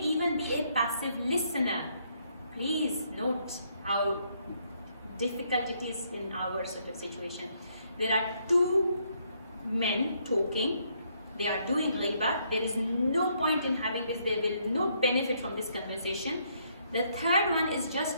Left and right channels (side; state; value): both; inverted; correlation -0.72